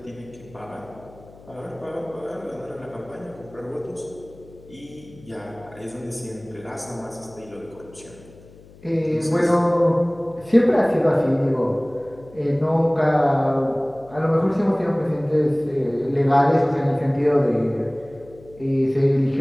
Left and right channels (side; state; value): left; noise; hum, 23 dB below the sound